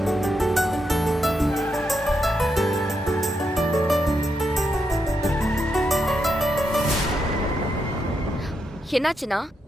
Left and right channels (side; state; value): both; normal; correlation 0.82